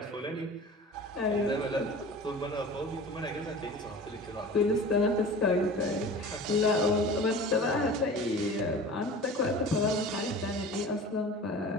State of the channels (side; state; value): both; normal; correlation 0.39